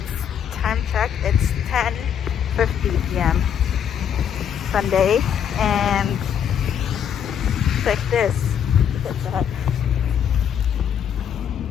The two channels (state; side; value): quieter; right; 8.5 dB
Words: time check, it's 10:50 p.m. Sunday, and it's like this. Look at that.